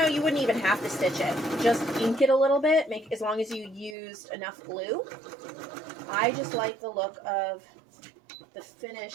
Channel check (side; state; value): left; drops out; at 4.0 s